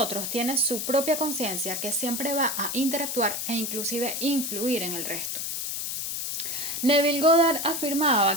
tiene su propia conciencia que siempre va a interactuar e inclusive influir en el resto. Neville Goddard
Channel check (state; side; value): noise; left; hiss, 3 dB below the sound